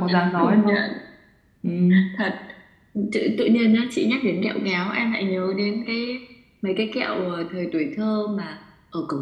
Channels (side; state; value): both; identical; correlation 1.00